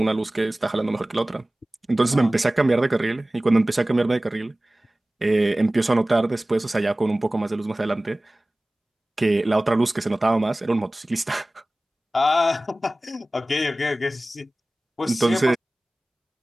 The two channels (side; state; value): both; normal; correlation 0.98